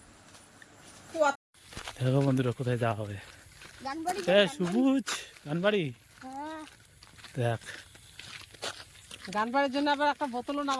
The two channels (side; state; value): both; identical; correlation 1.00